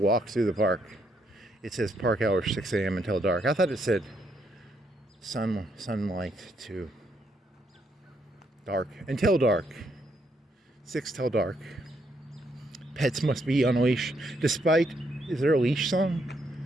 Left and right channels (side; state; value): both; normal; correlation 0.75